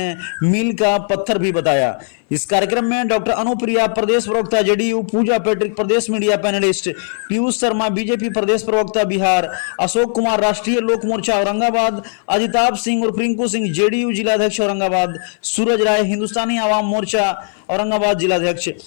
मील का पत्थर भी बताया। इस कार्यक्रम में डॉक्टर अनुप्रिया प्रदेश प्रवक्ता जेडीयू, पूजा पैट्रिक प्रदेश मीडिया पैनलिस्ट, पीयूष शर्मा बीजेपी प्रदेश प्रवक्ता बिहार, अशोक कुमार राष्ट्रीय लोक मोर्चा औरंगाबाद, अजिताभ सिंह और रिंकू सिंह जेडीयू जिलाध्यक्ष औरंगाबाद, सूरज राय हिंदुस्तानी आवाम मोर्चा औरंगाबाद जिलाध्यक्ष,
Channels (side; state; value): right; silent; 59 dB below the other